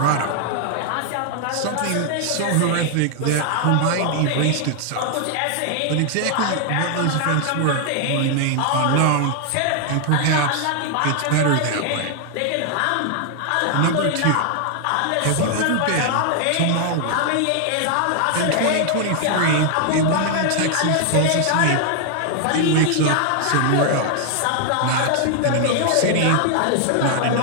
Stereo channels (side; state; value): both; different; correlation 0.00